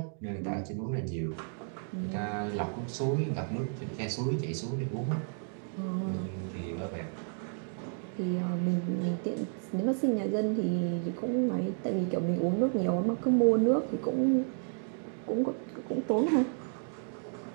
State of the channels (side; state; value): left; silent; 56 dB below the other